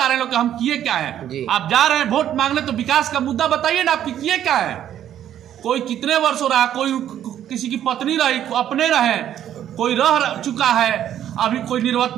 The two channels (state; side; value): quieter; left; 10.8 dB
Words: रहे लोग कि हम किए क्या है। आप जा रहे हैं वोट मांगने तो विकास का मुद्दा बताइए ना, आपकी किए क्या है। कोई कितने वर्ष हो रहा है, कोई किसी की पत्नी रही, अपने रहे, कोई रह चुका है, अभी कोई